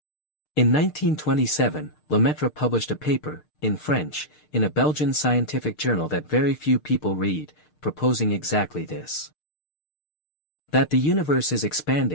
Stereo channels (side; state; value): right; late; 6.6 ms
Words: In 1927, Lemaitre published a paper, in French, in a Belgian scientific journal that very few people read, proposing exactly this. That the universe is